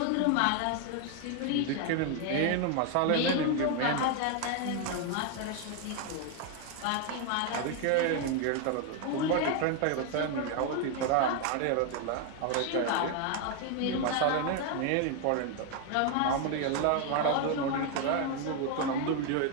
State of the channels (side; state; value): both; different; correlation 0.01